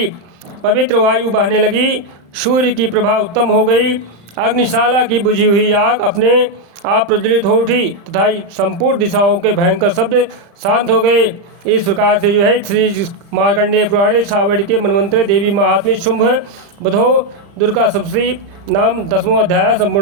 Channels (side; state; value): left; late; 35 ms